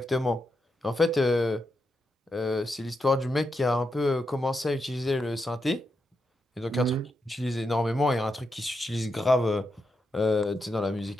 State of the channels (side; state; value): both; normal; correlation 0.84